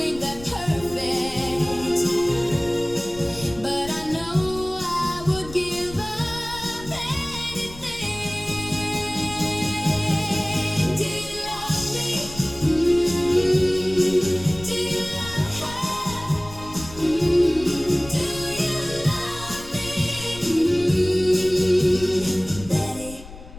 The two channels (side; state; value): left; noise; rumble, 16 dB below the sound